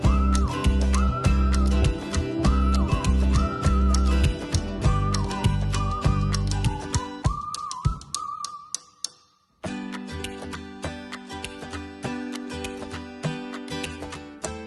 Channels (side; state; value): both; identical; correlation 1.00